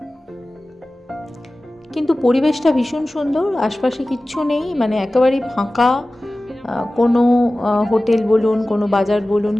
কিন্তু পরিবেশটা ভীষণ সুন্দর, আশপাশে কিচ্ছু নেই, মানে একেবারেই ফাঁকা। কোনো হোটেল বলুন, কোনো বাজার বলুন,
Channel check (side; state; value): both; normal; correlation 0.97